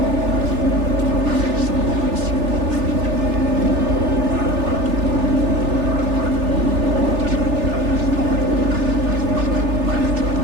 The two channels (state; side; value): late; left; 3.4 ms